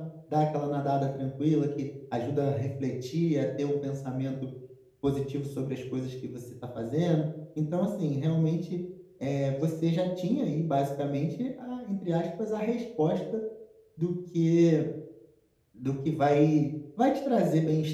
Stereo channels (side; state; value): both; identical; correlation 1.00